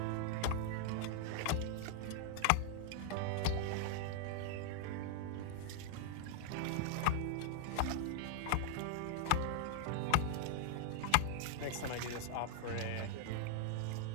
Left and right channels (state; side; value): different; both; correlation 0.00